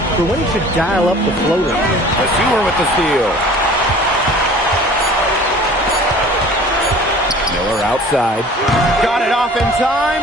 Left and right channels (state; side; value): normal; both; correlation 0.46